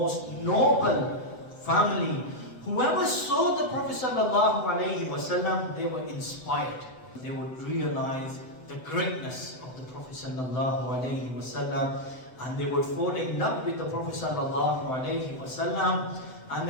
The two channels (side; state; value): right; late; 7.9 ms